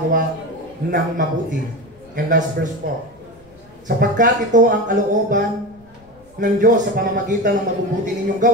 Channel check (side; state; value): left; noise; rumble, 28 dB below the sound